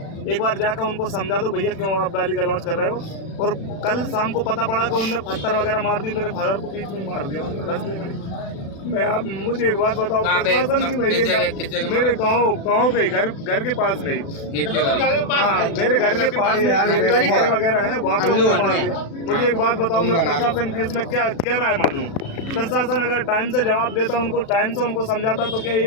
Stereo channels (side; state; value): right; late; 36 ms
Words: एक बार जाकर उनको समझा दो भैया क्यों आप गाली गलौज कर रहे हो। और कल शाम को पता पड़ा कि उनने पत्थर वगैरह मार दिए, मेरे फादर को बीच में मार दिया रास्ते में। मैं आप मुझे एक बात बताओ, प्रशासन की मेरे गाँव पे घर के पास में, हाँ मेरे घर के पास में वगैरह है, वहाँ पे उन्होंने मार दिया। मुझे एक बात बताओ, मैं प्रशासन की इसमें क्या राय मानूं? प्रशासन अगर टाइम से जवाब देता, उनको टाइम से उनको समझाता, तो क्या